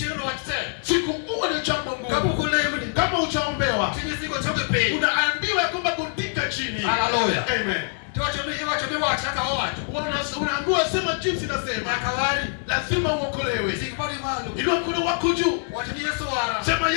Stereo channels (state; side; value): silent; right; 56 dB below the other